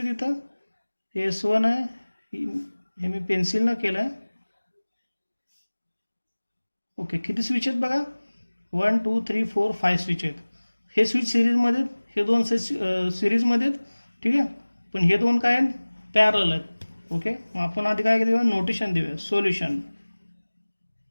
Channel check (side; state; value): both; inverted; correlation -1.00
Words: तिथं, S1 आहे, हे मी पेन्सिलनं केलं आहे. ओके, किती स्विच आहेत बघा 1 2 3 4 5 स्विच आहेत. हे स्विच सिरीजमध्ये, हे दोन सिरीजमध्ये आहेत. ठीक आहे, पण हे दोन काय आहेत पॅरलल आहेत. ओके, मग आपण आधी काय देऊया नोटेशन देऊया, solution